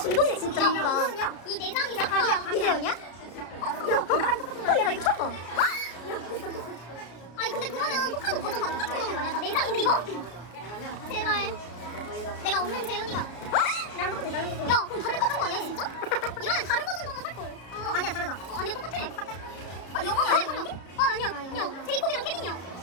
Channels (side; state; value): right; late; 33 ms